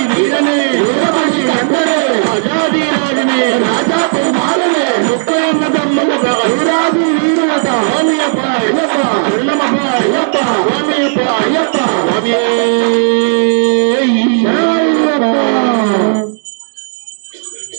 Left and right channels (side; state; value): left; silent; digital silence